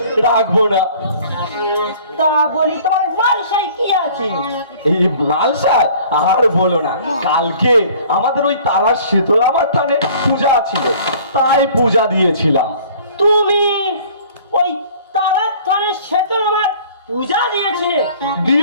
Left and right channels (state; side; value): inverted; both; correlation -0.51